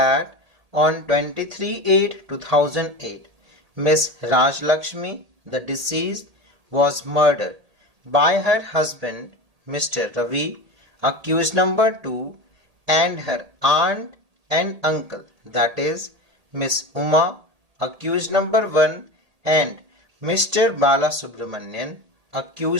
on 23/8/2008, Miss Rajlakshmi, the deceased, was murdered by her husband, Mr. Ravi, accused number 2, and her aunt and uncle, that is, Miss Uma, accused number 1, and Mr. Balasubramanian,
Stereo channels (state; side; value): late; left; 1.8 ms